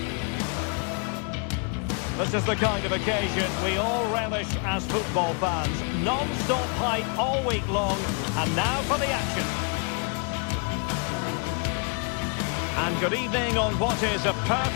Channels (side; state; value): right; quieter; 38.5 dB